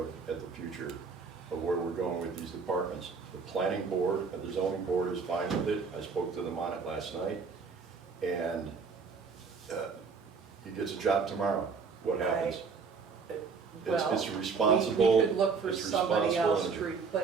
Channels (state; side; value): quieter; left; 5.2 dB